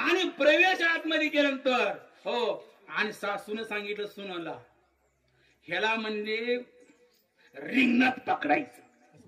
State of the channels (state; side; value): identical; both; correlation 1.00